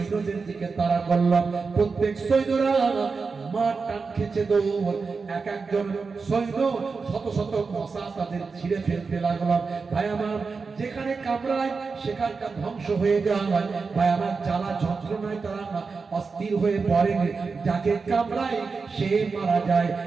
দিকে তাড়া করলাম, প্রত্যেক সৈন্যরা মার টান খেছে দৌড়, এক একজন সৈন্য শত শত মশা তাদের ছিঁড়ে ফেলতে লাগলাম। ভাই আমার যেখানে কামড়ায় সেখানটা ধ্বংস হয়ে যায়, ভাই আমার জ্বালা যন্ত্রণায় তারা অস্থির হয়ে পড়ে, যাকে কামড়ায় সে মারা যায়,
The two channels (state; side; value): quieter; left; 4.7 dB